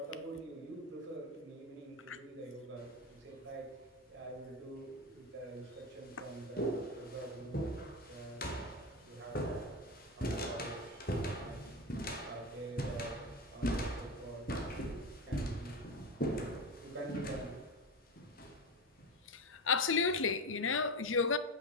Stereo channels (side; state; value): both; normal; correlation 0.18